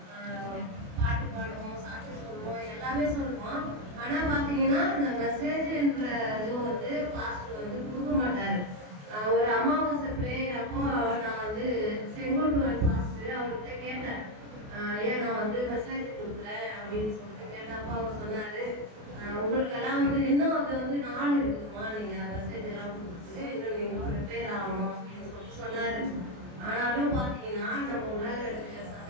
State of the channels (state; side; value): late; left; 28 ms